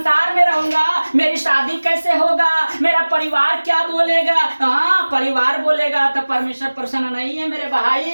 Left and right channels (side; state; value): both; inverted; correlation -1.00